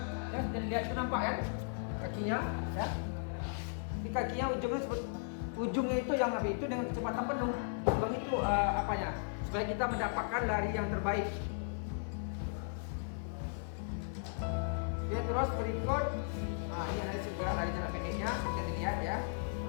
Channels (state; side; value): silent; right; 54 dB below the other